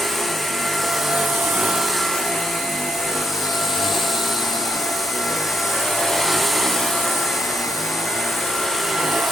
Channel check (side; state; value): both; normal; correlation 0.77